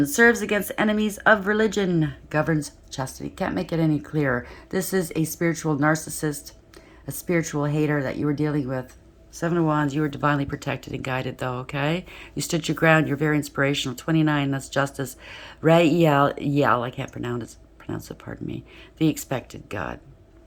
serves against enemies of religion. Governs chastity. Can't make it any clearer. This is a spiritual narcissist, a spiritual hater that you were dealing with. 7 of Wands, you were divinely protected and guided, though, okay? You stood your ground. You're very inspirational. 29, that's justice. Rael, I can't pronounce it, pardon me. The expected God.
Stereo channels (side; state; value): both; identical; correlation 1.00